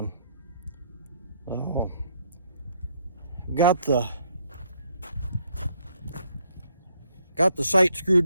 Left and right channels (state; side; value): inverted; both; correlation -0.69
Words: So got the sight screwed